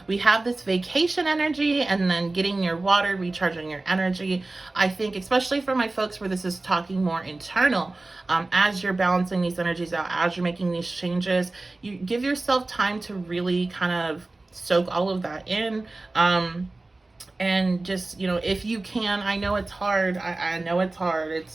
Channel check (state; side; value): quieter; left; 3.1 dB